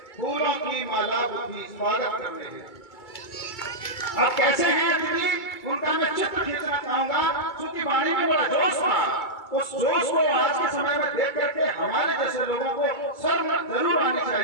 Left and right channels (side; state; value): right; late; 2.3 ms